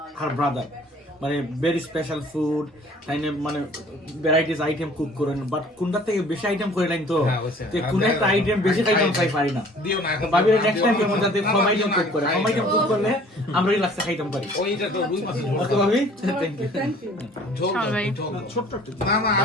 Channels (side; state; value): both; normal; correlation 0.52